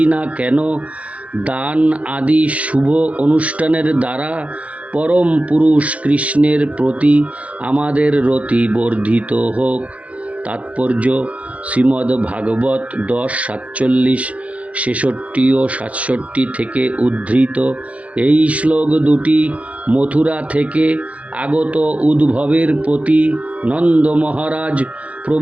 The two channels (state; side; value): late; left; 0.065 ms